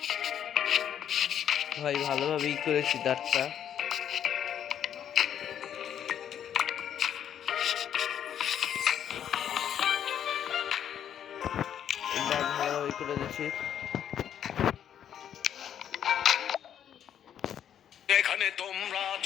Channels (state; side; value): quieter; right; 9.5 dB